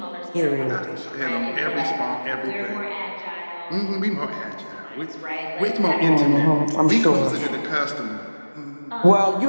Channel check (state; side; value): inverted; both; correlation -1.00